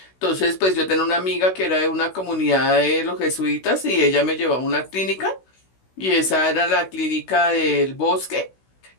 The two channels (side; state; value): right; late; 16 ms